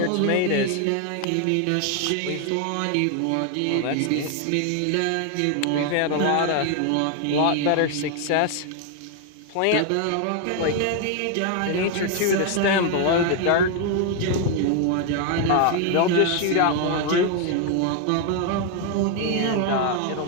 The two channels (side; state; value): both; different; correlation 0.01